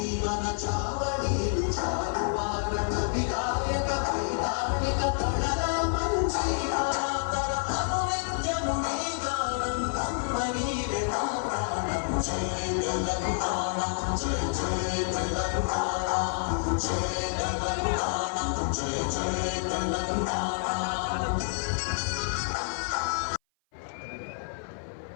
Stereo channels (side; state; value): right; silent; 56 dB below the other